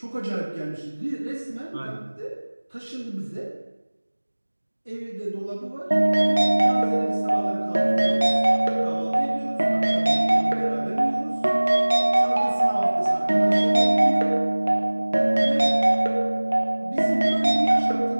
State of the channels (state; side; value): inverted; both; correlation -1.00